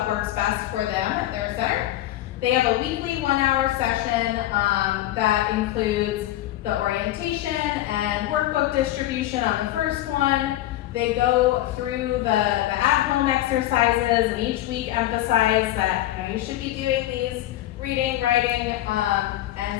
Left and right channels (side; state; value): right; quieter; 14.5 dB